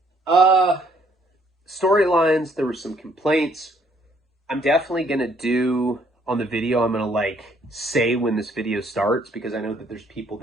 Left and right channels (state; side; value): normal; both; correlation 0.65